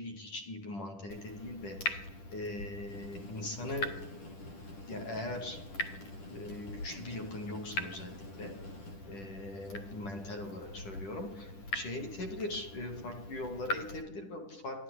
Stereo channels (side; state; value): right; late; 10 ms